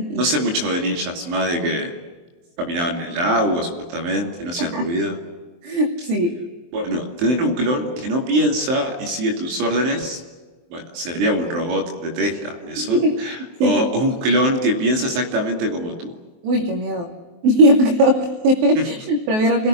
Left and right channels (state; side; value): late; left; 23 ms